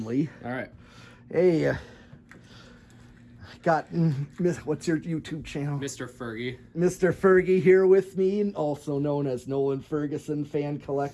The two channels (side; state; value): both; identical; correlation 1.00